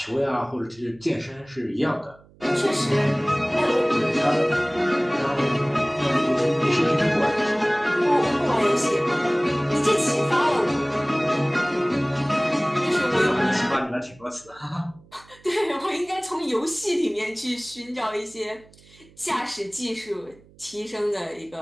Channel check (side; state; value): right; noise; hum, 27 dB below the sound